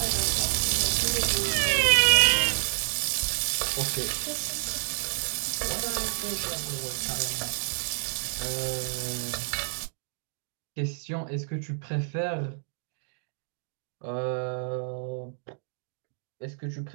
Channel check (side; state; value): left; silent; digital silence